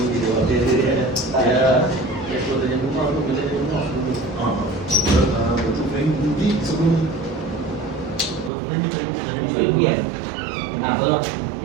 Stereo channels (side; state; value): left; drops out; at 8.5 s